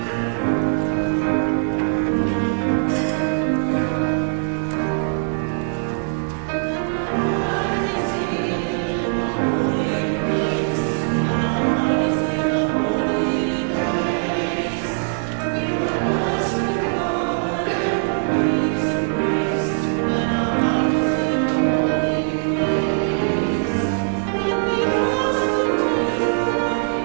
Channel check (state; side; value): silent; left; digital silence